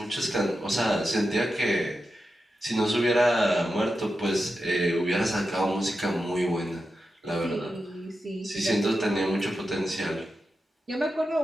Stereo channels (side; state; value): both; normal; correlation 0.89